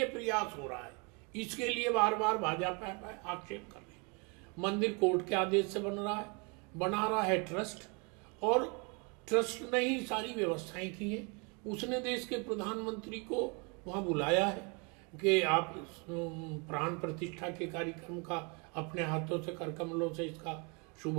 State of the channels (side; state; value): left; quieter; 32.4 dB